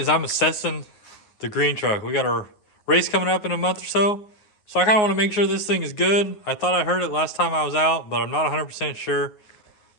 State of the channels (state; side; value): late; right; 9.6 ms